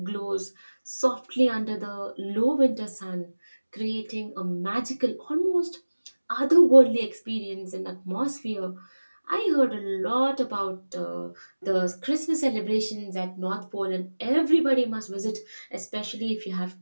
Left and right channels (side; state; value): both; inverted; correlation -1.00